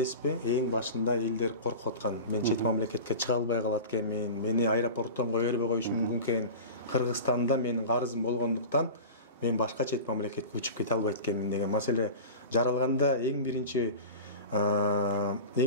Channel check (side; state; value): both; inverted; correlation -0.32